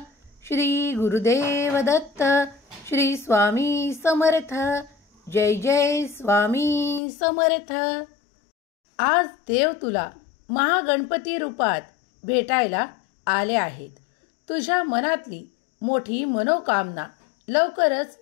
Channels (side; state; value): right; drops out; at 7.0 s